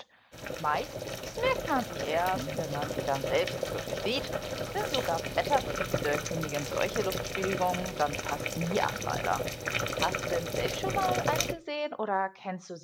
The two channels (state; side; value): identical; both; correlation 1.00